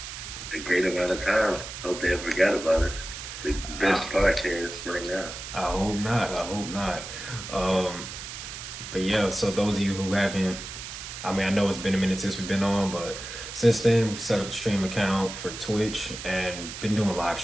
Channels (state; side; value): noise; right; hiss, 9 dB below the sound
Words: A great amount of time. Hope they ever forgot about us. The best podcast right now. I hope not. I hope not. But yeah, so those of you who haven't, I know it's been a minute since we've been on, but since then we set up the stream account for Twitch and been doing live